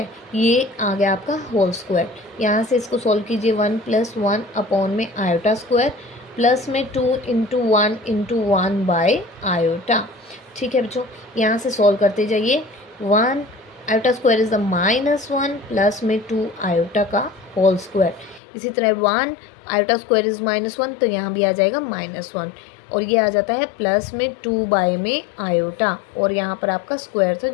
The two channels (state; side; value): drops out; right; at 18.4 s